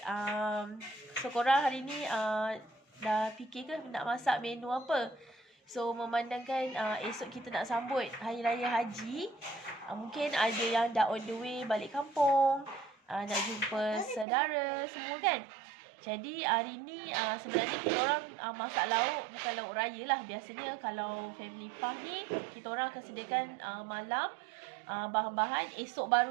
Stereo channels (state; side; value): drops out; left; at 14.2 s